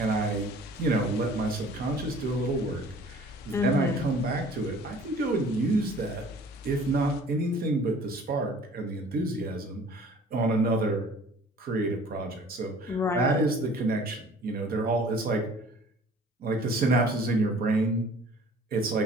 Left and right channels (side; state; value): both; normal; correlation 0.50